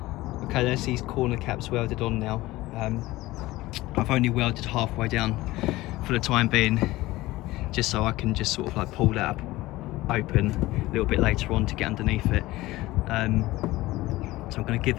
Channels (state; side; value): quieter; right; 18.3 dB